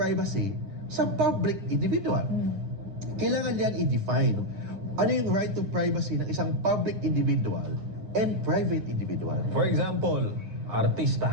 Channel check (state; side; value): late; left; 9.8 ms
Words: sa public individual. Kailangan yan i-define. Ano yung right to privacy ng isang public individual and private individual? For example,